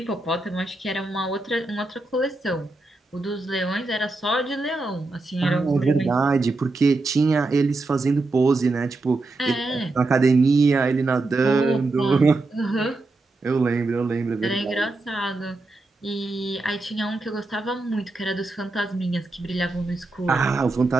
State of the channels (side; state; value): left; quieter; 3.2 dB